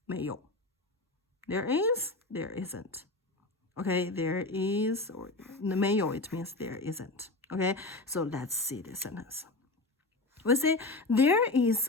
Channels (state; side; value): quieter; right; 3.0 dB